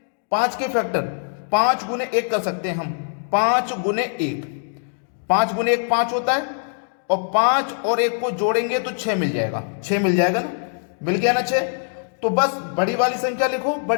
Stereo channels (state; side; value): silent; right; digital silence